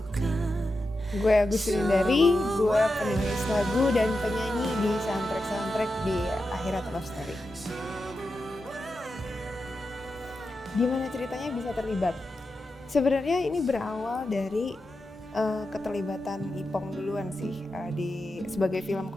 Gue Agus Rindari, gue penulis lagu dan penyanyi di soundtrack di Akhirat Love Story. Gimana ceritanya bisa terlibat? Sebenarnya ini berawal dari keterlibatan Ipong duluan sih sebagai film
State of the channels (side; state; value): both; normal; correlation 0.89